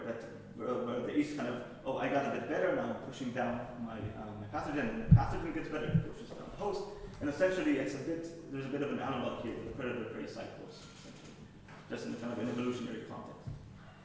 the yeast kind of, oh, I got a bit better, now I'm pushing down my pathogen, and the pathogen gets better, it pushes down the host, and essentially there's a bit of an analog here with the predator-prey cycles, essentially, just in kind of an evolutionary context.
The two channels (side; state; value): both; identical; correlation 1.00